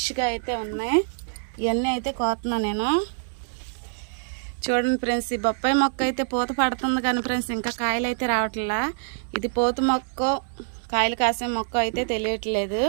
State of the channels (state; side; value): silent; left; digital silence